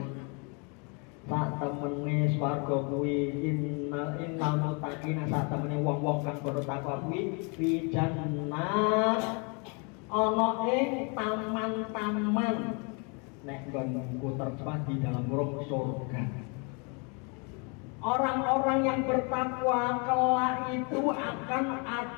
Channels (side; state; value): right; quieter; 34.2 dB